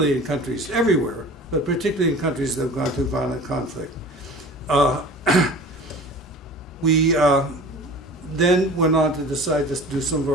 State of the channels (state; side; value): normal; both; correlation 0.41